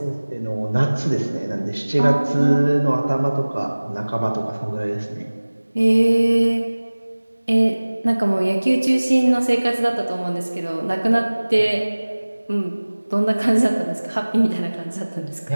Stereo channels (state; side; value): inverted; both; correlation -1.00